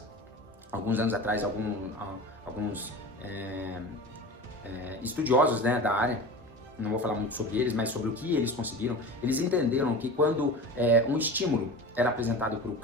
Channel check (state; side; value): normal; both; correlation 0.33